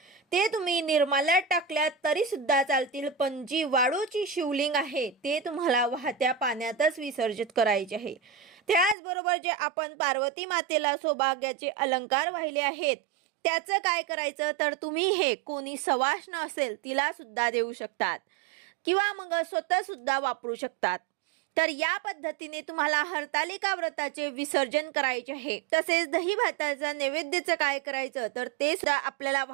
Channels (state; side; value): drops out; left; at 9.0 s